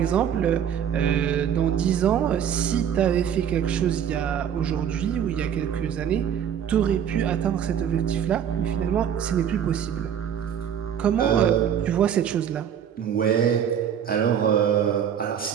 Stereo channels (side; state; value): left; quieter; 8.7 dB